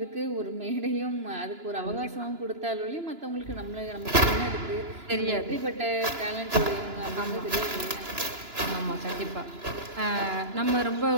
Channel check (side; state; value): left; late; 2.9 ms